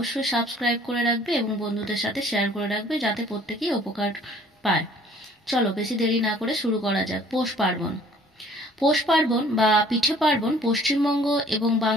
সাবস্ক্রাইব করে রাখবে এবং বন্ধুদের সাথে শেয়ার করে রাখবে, যাতে প্রত্যেকেই উপকার পায়। চলো বেশি দেরি না করে শুরু করা যাক। পৌষ পার্বণ। পৌষ পার্বণ বা পিঠে পার্বণ পশ্চিমবঙ্গ এবং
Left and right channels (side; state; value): both; normal; correlation 0.55